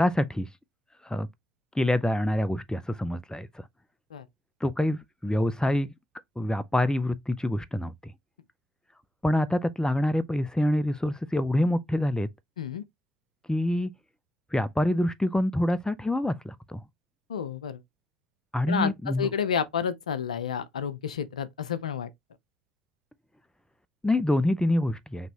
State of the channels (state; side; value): normal; both; correlation 0.80